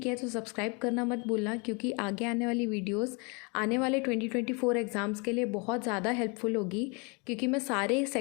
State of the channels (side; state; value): right; quieter; 31.1 dB